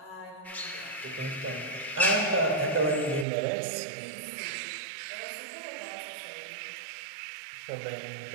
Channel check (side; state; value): left; drops out; at 3.2 s